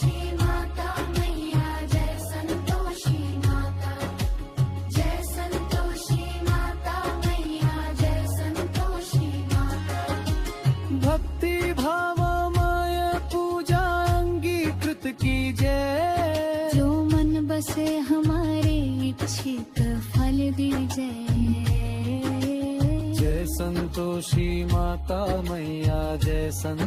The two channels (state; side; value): identical; both; correlation 1.00